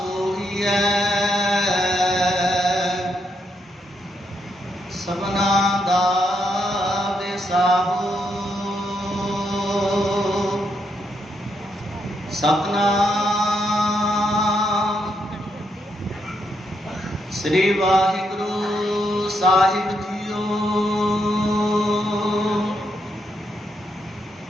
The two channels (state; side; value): normal; both; correlation 0.79